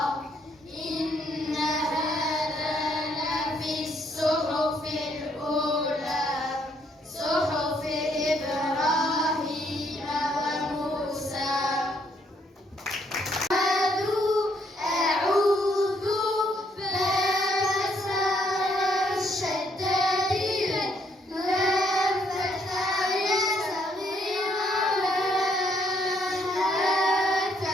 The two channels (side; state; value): both; normal; correlation 0.71